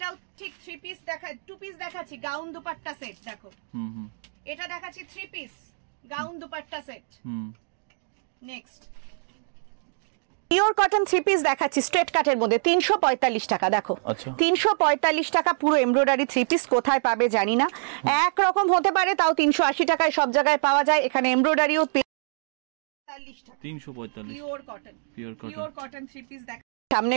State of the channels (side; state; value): left; silent; digital silence